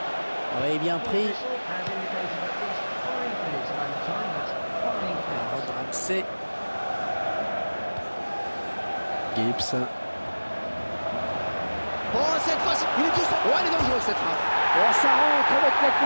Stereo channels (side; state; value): both; inverted; correlation -1.00